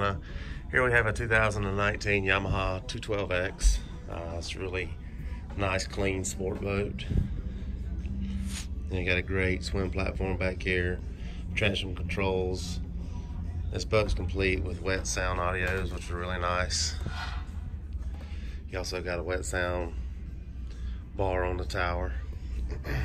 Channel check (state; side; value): identical; both; correlation 1.00